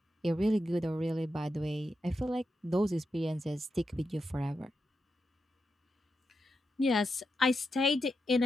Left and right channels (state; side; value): normal; both; correlation 0.87